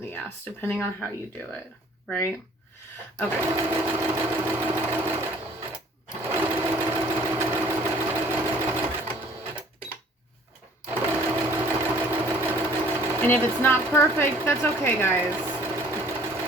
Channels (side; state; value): both; normal; correlation 0.55